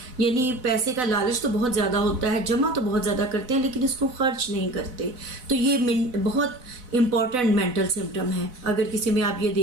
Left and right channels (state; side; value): late; left; 4.0 ms